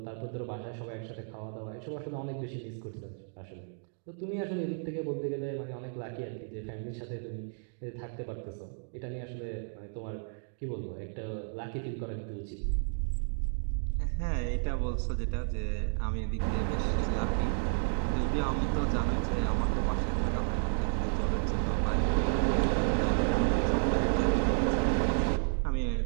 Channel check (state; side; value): silent; left; digital silence